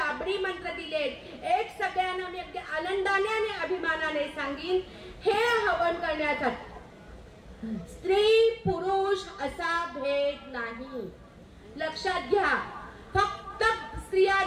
मंत्र दिलेत। एक सगळ्यांना मी अगदी आनंदाने आणि अभिमानाने सांगीन, हे हवन करण्याचा स्त्री पुरुष असा भेद नाही, लक्षात घ्या। फक्त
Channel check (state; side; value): identical; both; correlation 1.00